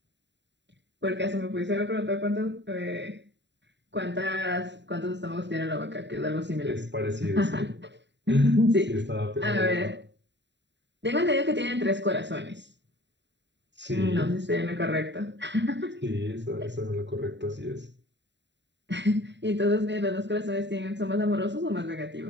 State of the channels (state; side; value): late; left; 0.52 ms